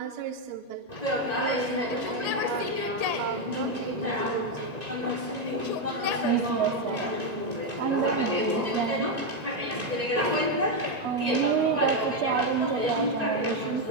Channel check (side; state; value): left; late; 1.9 ms